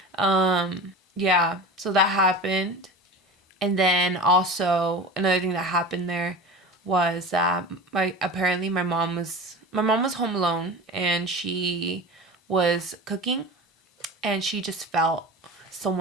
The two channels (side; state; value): both; normal; correlation 0.32